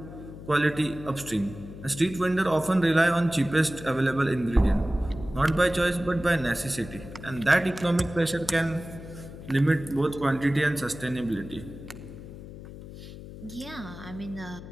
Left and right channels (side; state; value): left; noise; hum, 14 dB below the sound